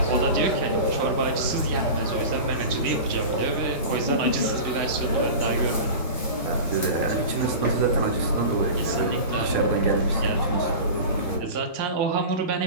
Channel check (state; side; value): inverted; both; correlation -0.31